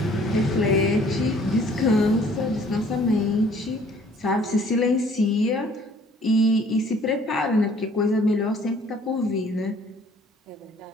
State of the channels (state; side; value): normal; both; correlation 0.57